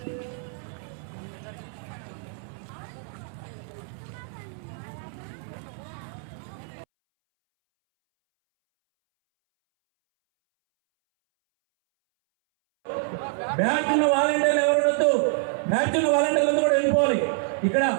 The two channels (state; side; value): silent; left; 61 dB below the other